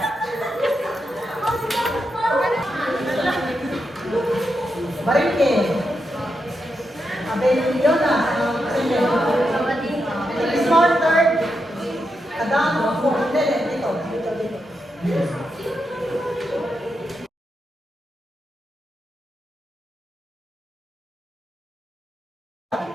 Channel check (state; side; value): normal; both; correlation 0.85